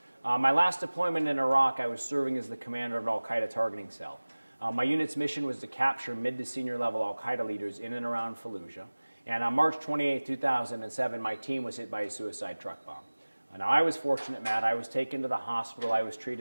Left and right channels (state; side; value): inverted; both; correlation -1.00